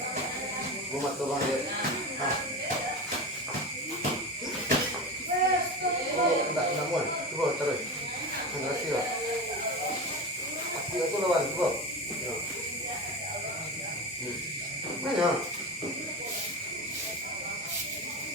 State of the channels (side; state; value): both; normal; correlation 0.24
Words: Gua matu bang dia. Ah. Oh, enggak muat. Coba terus. Enggak sih lah. Aku itu lawan coba. Ya. Mana?